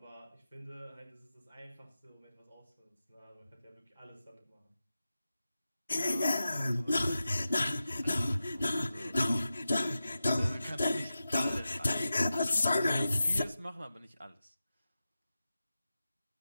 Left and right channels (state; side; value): inverted; both; correlation -0.93